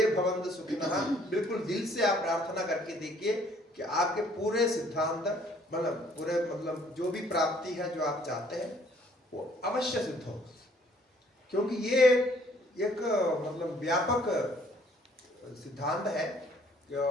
भवन्तु सुखिनः बिल्कुल दिल से आप प्रार्थना करके देखिए कि आपके पूरे सिद्धांत, मतलब पूरे, मतलब जो भी प्राप्ति है जो आप चाहते हैं वो अवश्य सिद्ध हो। क्योंकि ये एक मतलब व्यापक सिद्धांत है,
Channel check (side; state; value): both; normal; correlation 0.61